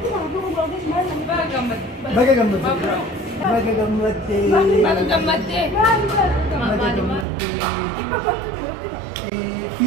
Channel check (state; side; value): drops out; left; at 7.2 s